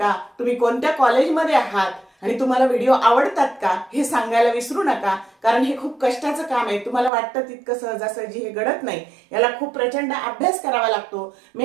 तुम्ही कोणत्या कॉलेजमध्ये आहात आणि तुम्हाला व्हिडिओ आवडतात का हे सांगायला विसरू नका. कारण हे खूप कष्टाचं काम आहे. तुम्हाला वाटतं तितकं सहजासहजी हे घडत नाही. याला खूप प्रचंड अभ्यास करावा लागतो,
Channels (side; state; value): left; drops out; at 7.1 s